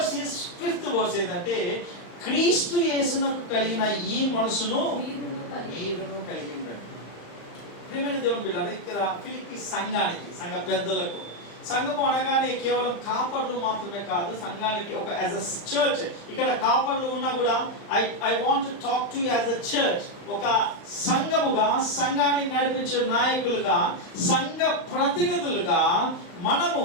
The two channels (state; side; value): late; right; 35 ms